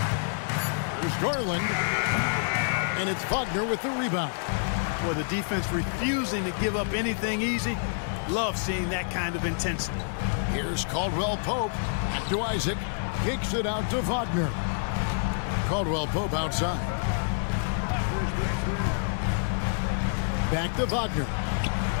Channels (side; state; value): right; silent; digital silence